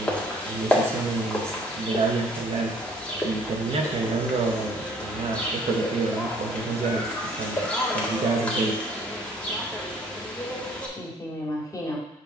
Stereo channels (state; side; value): normal; both; correlation 0.58